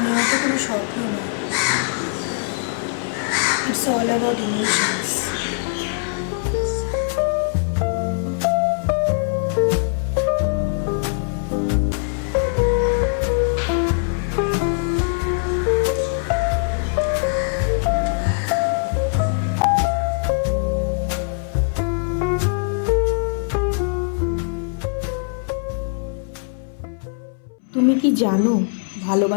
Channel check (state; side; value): silent; right; 62 dB below the other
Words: হয়তো কোনো স্বপ্ন নয়, ইটস অল অ্যাবাউট ইমোশনস। তুমি কি জানো